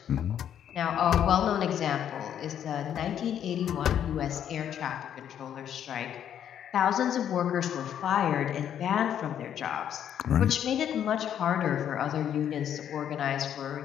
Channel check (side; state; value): right; quieter; 9.6 dB